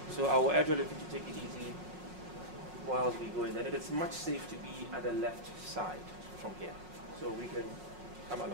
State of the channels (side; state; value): left; late; 5.5 ms